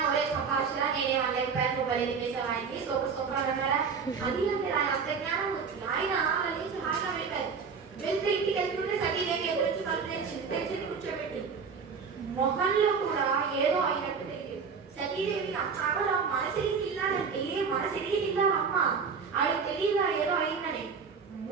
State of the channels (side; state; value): left; quieter; 5.7 dB